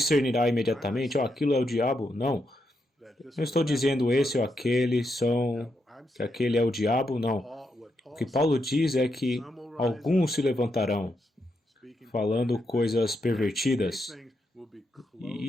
imediatamente, aquilo é o diabo. Não. Não estou dizendo esse ou aquele que aquele é o diabo, não. O que Paulo diz é que alguns se levantarão falando coisas pervertidas.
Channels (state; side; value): normal; both; correlation 0.82